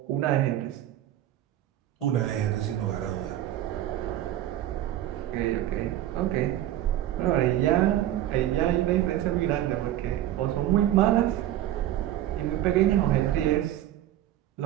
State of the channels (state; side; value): quieter; left; 12.9 dB